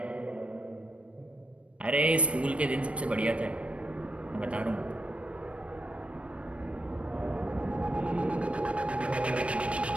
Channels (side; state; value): left; late; 0.061 ms